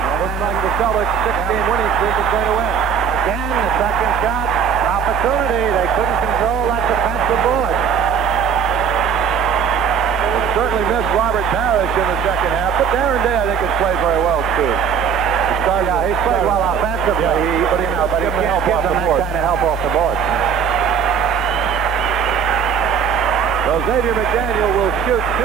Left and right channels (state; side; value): quieter; left; 7.0 dB